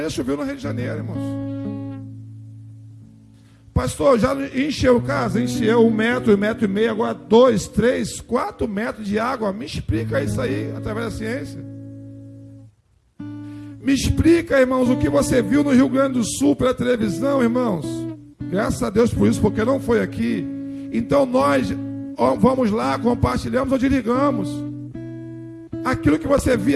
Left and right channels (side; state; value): both; identical; correlation 1.00